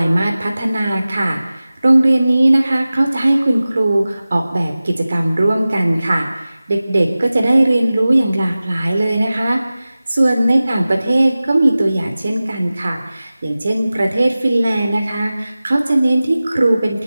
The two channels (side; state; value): both; inverted; correlation -0.97